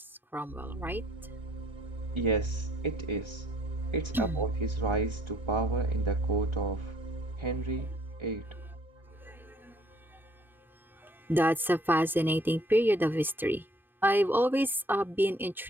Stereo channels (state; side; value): normal; both; correlation 0.62